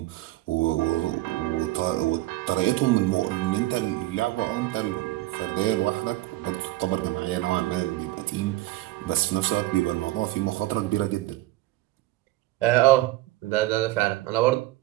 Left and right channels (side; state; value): left; quieter; 17.0 dB